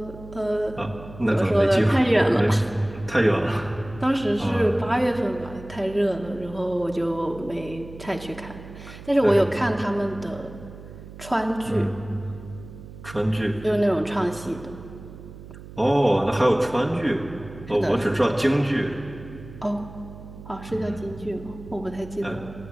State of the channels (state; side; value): noise; right; hum, 15 dB below the sound